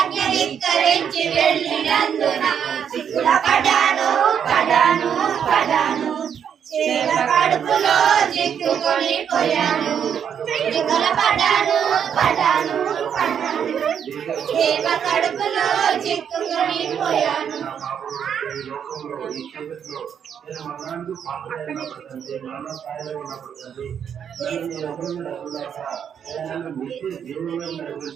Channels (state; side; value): quieter; left; 8.2 dB